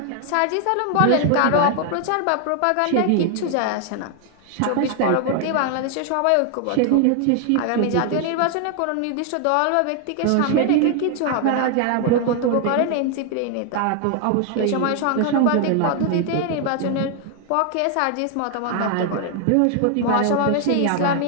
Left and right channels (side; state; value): both; different; correlation 0.00